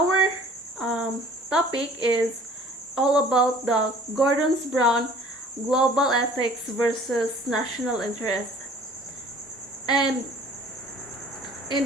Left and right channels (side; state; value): both; normal; correlation 0.51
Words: topic is all about the Gordon's Brown global ethics versus national interest. And in